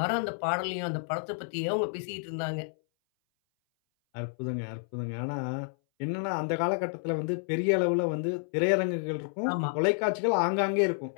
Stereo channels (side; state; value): right; silent; 58 dB below the other